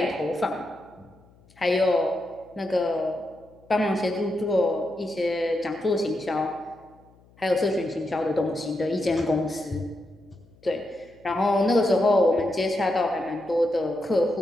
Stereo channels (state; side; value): noise; left; hum, 29 dB below the sound